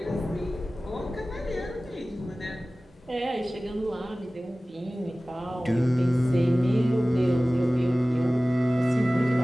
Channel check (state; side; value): normal; both; correlation 0.97